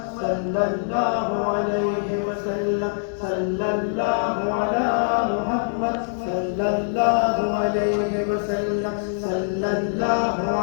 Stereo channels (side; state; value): right; silent; 60 dB below the other